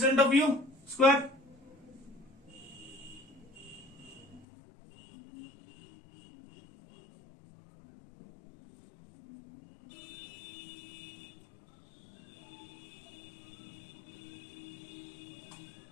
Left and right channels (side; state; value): right; drops out; at 4.5 s